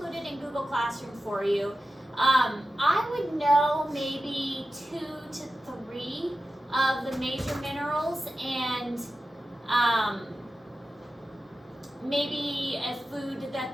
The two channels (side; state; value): both; normal; correlation 0.93